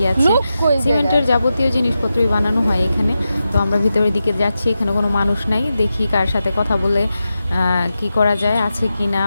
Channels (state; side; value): inverted; both; correlation -0.90